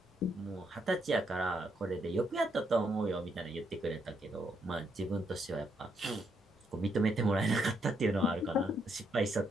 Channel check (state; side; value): normal; both; correlation 0.76